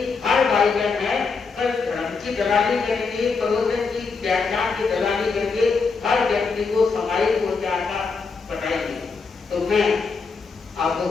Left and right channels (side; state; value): right; quieter; 4.8 dB